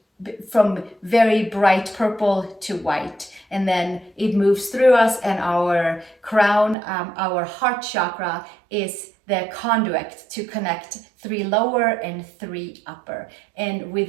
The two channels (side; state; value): left; drops out; at 6.8 s